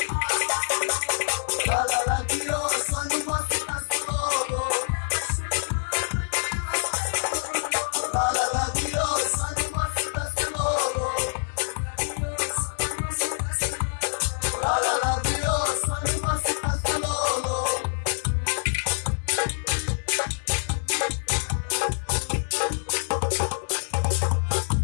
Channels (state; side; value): silent; right; 61 dB below the other